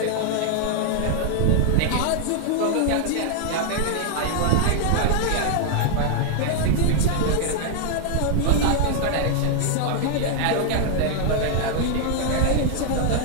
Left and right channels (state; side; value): different; both; correlation 0.00